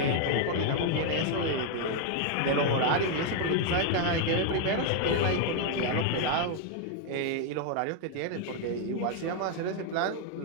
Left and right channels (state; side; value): different; both; correlation 0.01